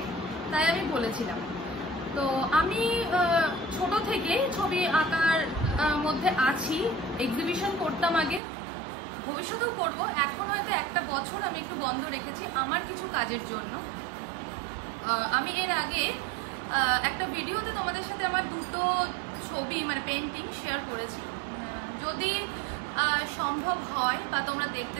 তাই আমি বলেছিলাম। তো আমি ছোট থেকে ছবি আঁকার মধ্যে আছি, এক্সিবিশন করতাম আগে, ভবিষ্যতেও করবো। এখন হয়তো একটা বছর আমি একটু বন্ধ রেখেছি আমার কিছু কাজের জন্য। আমি এর আগে একটা ভিডিওতে তোমাদের সাথে আমার দুটো ছবি মানে পেন্টিং শেয়ার করেছি। যদি সম্ভব হয় বা তোমরা দেখতে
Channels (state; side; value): drops out; left; at 8.4 s